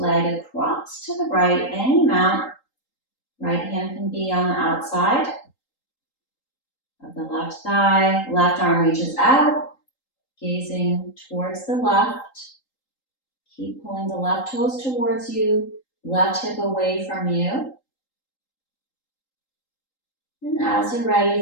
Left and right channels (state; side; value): late; right; 3.8 ms